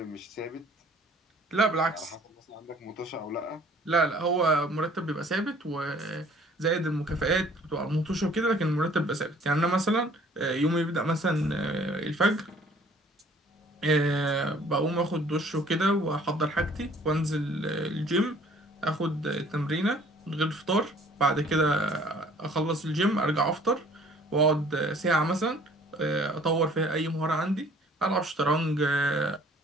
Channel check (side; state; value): both; normal; correlation 0.55